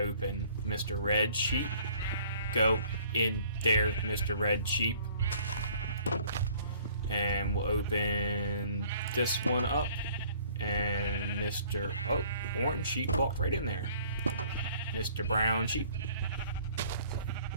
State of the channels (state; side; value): inverted; both; correlation -0.56